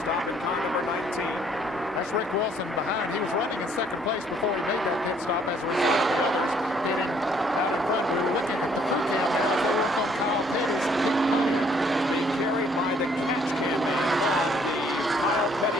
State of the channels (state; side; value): normal; both; correlation 0.64